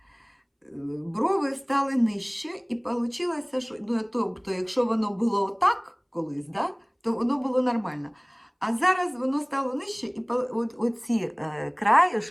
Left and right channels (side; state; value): both; identical; correlation 1.00